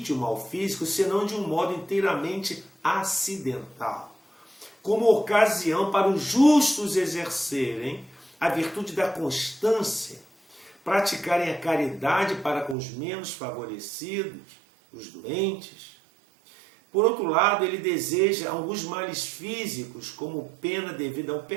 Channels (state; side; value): drops out; left; at 12.8 s